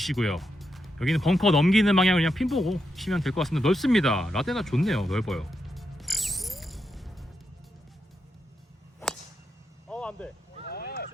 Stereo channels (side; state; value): both; normal; correlation 0.85